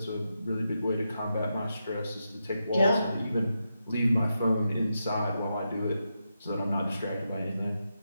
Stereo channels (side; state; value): both; inverted; correlation -0.86